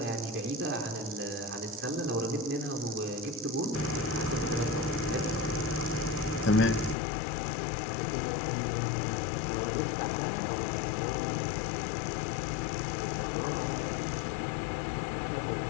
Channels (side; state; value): right; drops out; at 7.0 s